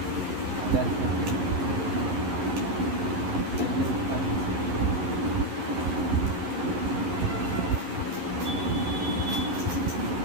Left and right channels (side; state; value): left; late; 11 ms